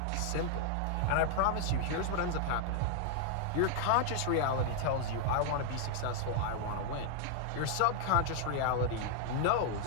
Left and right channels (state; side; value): different; both; correlation 0.00